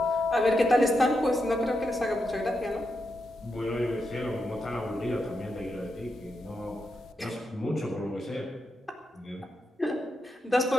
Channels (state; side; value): normal; both; correlation 0.84